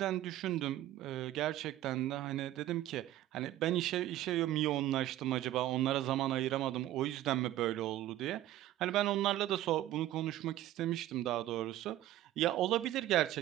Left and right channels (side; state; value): left; quieter; 14.0 dB